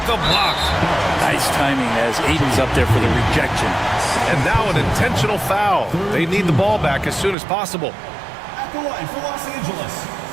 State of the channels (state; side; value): drops out; left; at 7.4 s